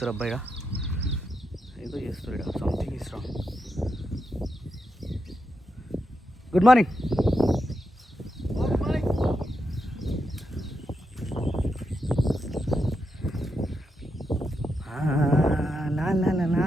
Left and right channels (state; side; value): normal; both; correlation 0.85